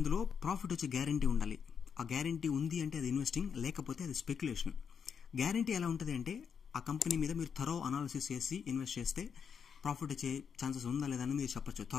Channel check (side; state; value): right; quieter; 6.9 dB